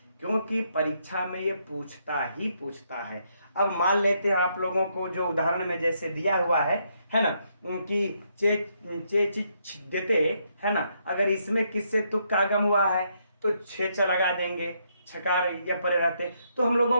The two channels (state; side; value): inverted; both; correlation -0.75